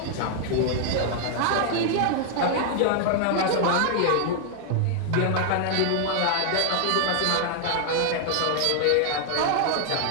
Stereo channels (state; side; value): different; both; correlation 0.00